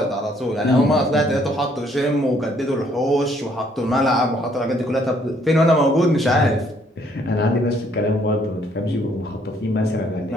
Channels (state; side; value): normal; both; correlation 0.66